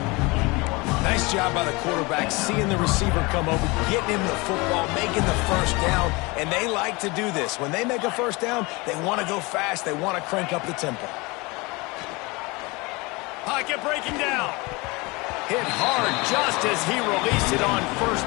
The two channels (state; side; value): quieter; right; 25.3 dB